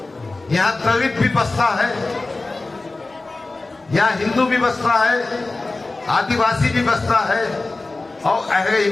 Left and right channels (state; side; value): quieter; right; 3.3 dB